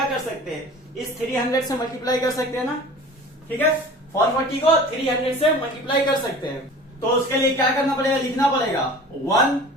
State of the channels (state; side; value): normal; both; correlation 0.41